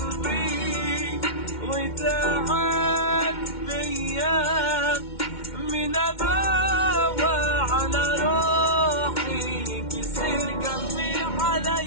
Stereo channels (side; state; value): right; late; 2.1 ms